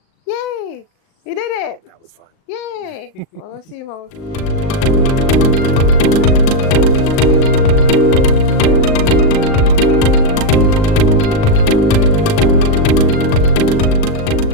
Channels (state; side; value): late; right; 38 ms